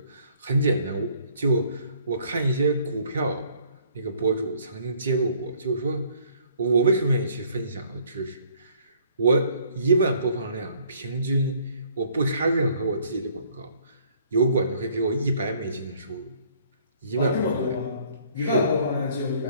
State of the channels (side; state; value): both; inverted; correlation -0.60